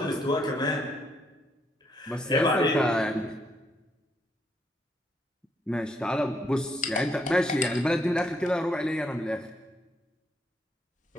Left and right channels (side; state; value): both; normal; correlation 0.73